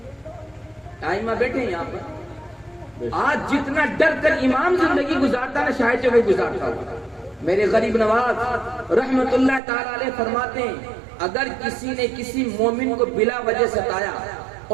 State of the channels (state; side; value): drops out; left; at 9.6 s